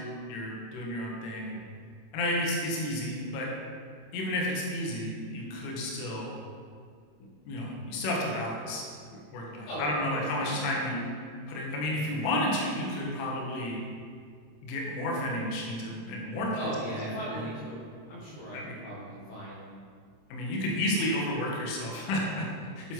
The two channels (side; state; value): right; late; 26 ms